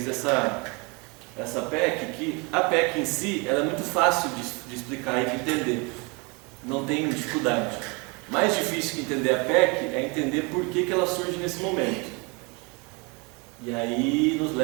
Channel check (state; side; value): quieter; left; 29.7 dB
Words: essa PEC, que a PEC em si, ela é muito fácil de explicar e de entender. Não tem dificuldade. Mais difícil que entender a PEC é entender por que ela surge nesse momento. E aí nos